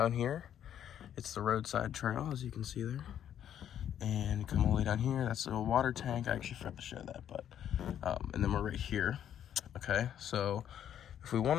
here. It's the roadside trail, as you can see there. And come all the way down here. That's a water tank. I actually forgot to show that, but and then we're right here. Okay, so if we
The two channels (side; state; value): right; quieter; 10.0 dB